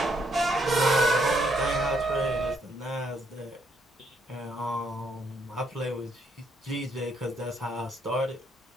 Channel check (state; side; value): normal; both; correlation 0.73